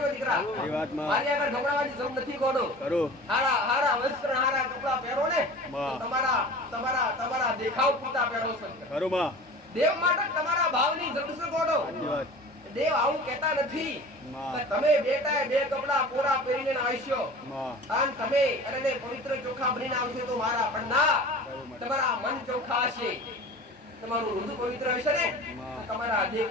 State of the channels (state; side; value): normal; both; correlation 0.38